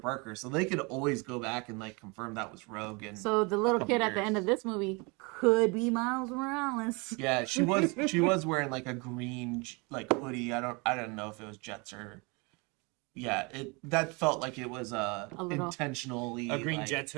so they could always go back and like confirm that was Rogue. And So the little couple kid at the years. end of this movie could be Miles Morales. yeah, she was wearing like a green like hoodie. I don't know if it was Jets or that felt like it was little- intentionally A green like, Jets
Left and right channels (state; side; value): quieter; left; 28.9 dB